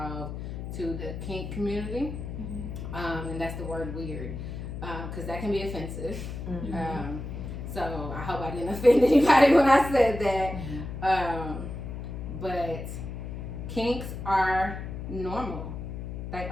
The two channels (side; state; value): left; noise; hum, 7 dB below the sound